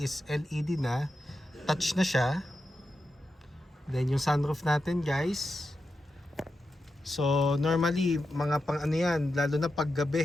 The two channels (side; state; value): both; normal; correlation 0.89